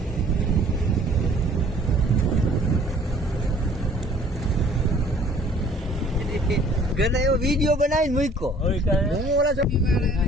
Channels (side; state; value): both; normal; correlation 0.54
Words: ઘરે એવો વિડીયો બનાવીને મૂક્યો. હું ઓલા